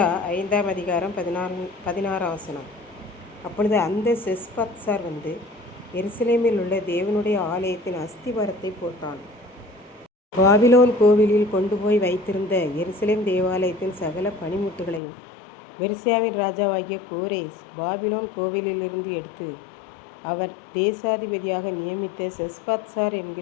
5ஆம் அதிகாரம் 16ஆம் வசனம். அப்பொழுது அந்த செஸ்பத்சார் வந்து எருசலேமில் உள்ள தேவனுடைய ஆலயத்தின் அஸ்திவாரத்தை போட்டான். பாபிலோன் கோவிலில் கொண்டு போய் வைத்திருந்த எருசலேம் தேவாலயத்தின் சகல பணிமுட்டுகளையும் பெர்சியாவின் ராஜாவாகிய கோரேஸ் பாபிலோன் கோவிலிலிருந்து எடுத்து அவர் தேசாதிபதியாக நியமித்த செஸ்பத்சார்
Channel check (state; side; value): drops out; right; at 15.0 s